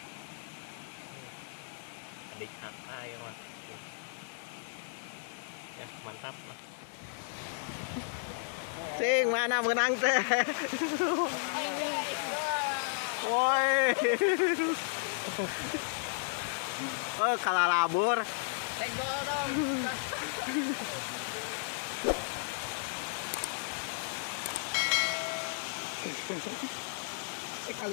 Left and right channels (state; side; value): silent; right; 55 dB below the other